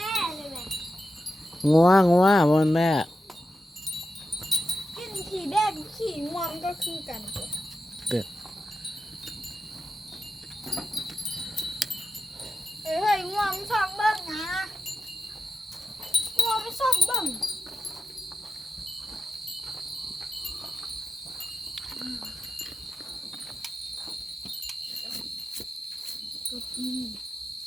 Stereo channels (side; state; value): both; normal; correlation 0.91